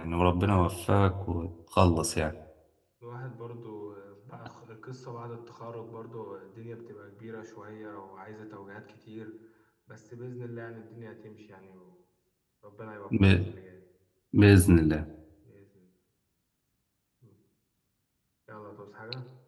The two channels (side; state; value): both; identical; correlation 1.00